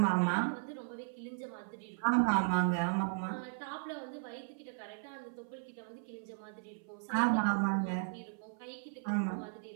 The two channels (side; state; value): left; silent; 54 dB below the other